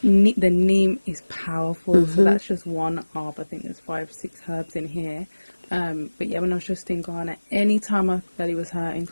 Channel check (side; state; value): both; inverted; correlation -1.00